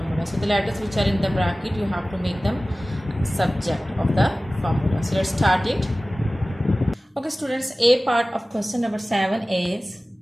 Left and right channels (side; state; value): both; normal; correlation 0.97